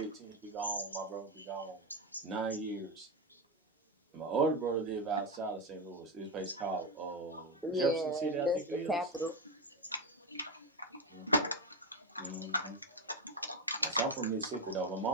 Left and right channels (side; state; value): both; normal; correlation 0.11